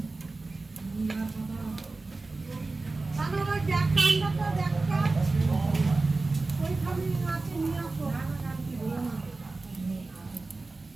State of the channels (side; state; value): left; quieter; 3.5 dB